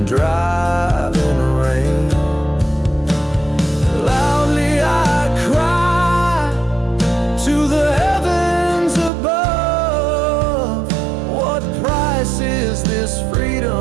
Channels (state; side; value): drops out; left; at 9.1 s